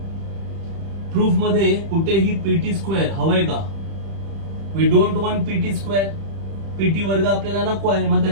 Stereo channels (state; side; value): late; left; 31 ms